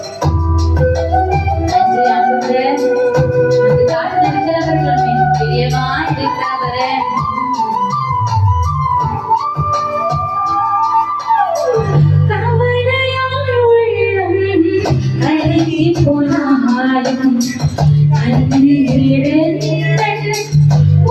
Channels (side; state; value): both; identical; correlation 1.00